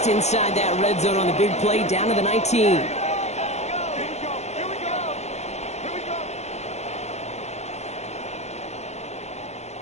inside that red zone on the big play down to the 19.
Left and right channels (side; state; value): right; late; 0.32 ms